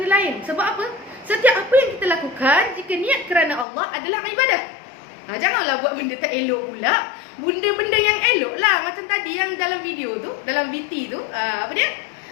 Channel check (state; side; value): drops out; right; at 3.7 s